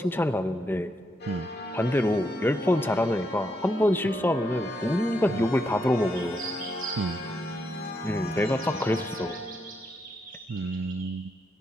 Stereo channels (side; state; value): both; normal; correlation 0.79